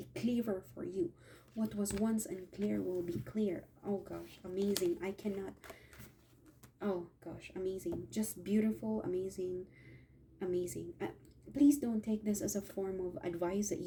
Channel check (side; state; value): both; identical; correlation 1.00